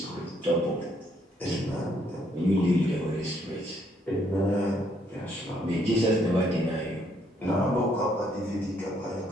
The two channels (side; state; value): both; normal; correlation 0.69